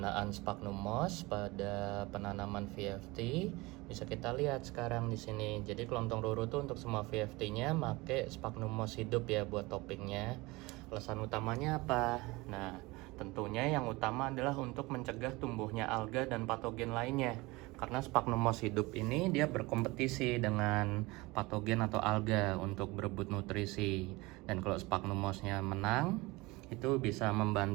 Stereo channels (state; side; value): quieter; left; 22.6 dB